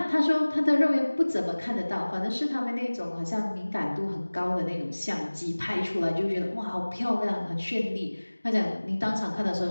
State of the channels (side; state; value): both; inverted; correlation -1.00